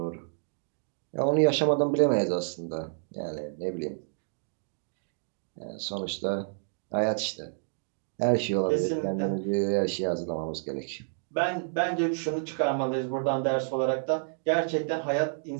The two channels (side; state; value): left; silent; digital silence